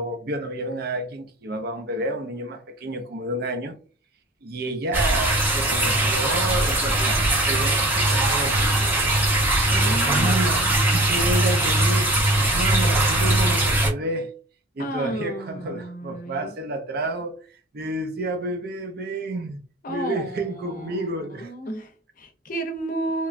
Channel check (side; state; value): both; normal; correlation 0.44